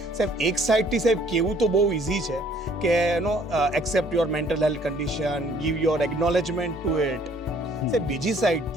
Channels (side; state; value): both; normal; correlation 0.59